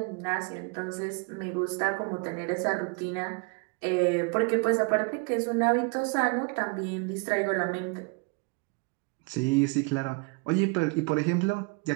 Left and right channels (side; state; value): left; quieter; 31.1 dB